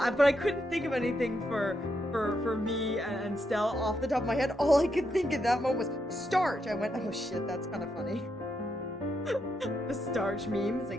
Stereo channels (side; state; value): both; normal; correlation 0.81